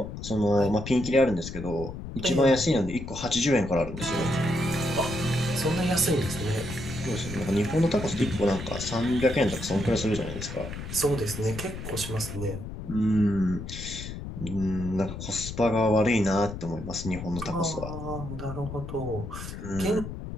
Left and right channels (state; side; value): noise; left; rumble, 8 dB below the sound